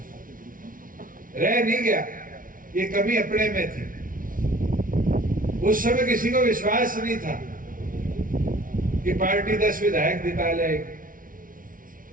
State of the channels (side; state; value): left; late; 0.39 ms